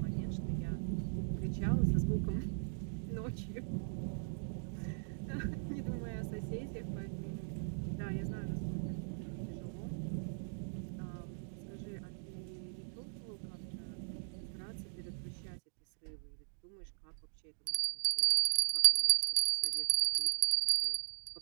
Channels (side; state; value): left; silent; digital silence